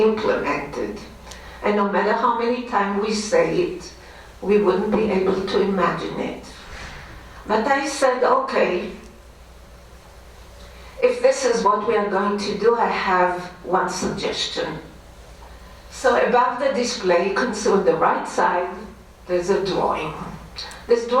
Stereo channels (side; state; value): both; identical; correlation 1.00